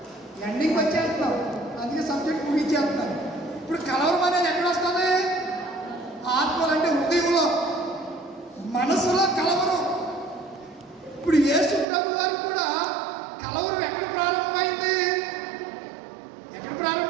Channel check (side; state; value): left; drops out; at 11.9 s